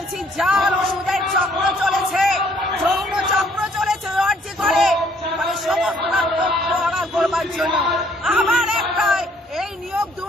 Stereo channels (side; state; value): both; normal; correlation 0.64